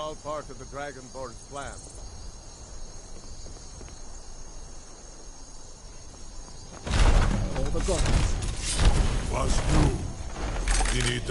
part of the Dragonborn's plan. All the gods. Was du? Dini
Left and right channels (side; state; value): both; identical; correlation 1.00